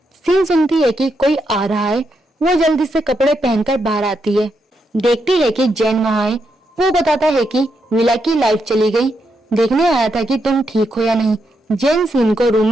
सीन सुनती है कि कोई आ रहा है। वो जल्दी से कपड़े पहनकर बाहर आती है। देखती है कि जैन वहाँ है। वो बताता है कि विला की लाइट चली गई, देखने आया था कि तुम ठीक हो या नहीं। जैन सीन को रूम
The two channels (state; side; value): normal; both; correlation 0.82